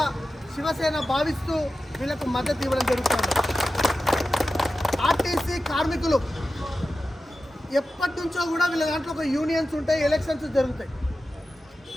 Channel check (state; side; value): normal; both; correlation 0.93